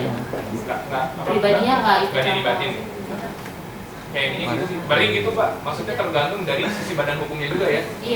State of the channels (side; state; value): both; identical; correlation 1.00